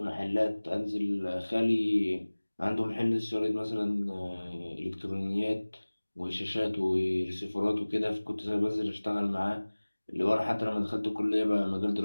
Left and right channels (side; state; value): both; inverted; correlation -1.00